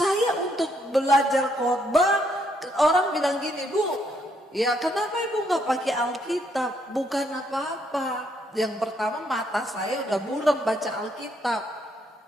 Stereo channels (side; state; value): both; normal; correlation 0.72